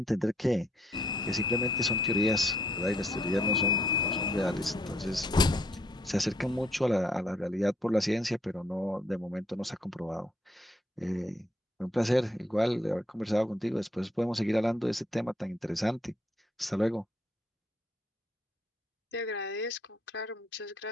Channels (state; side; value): normal; both; correlation 0.69